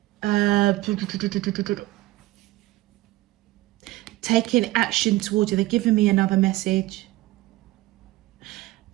taking action towards you. They're giving me another message.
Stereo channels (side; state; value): left; quieter; 18.1 dB